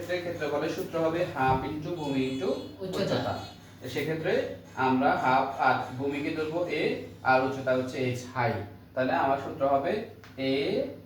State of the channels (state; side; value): identical; both; correlation 1.00